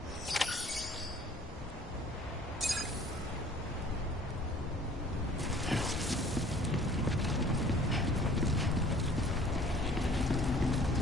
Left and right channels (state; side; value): normal; both; correlation 0.52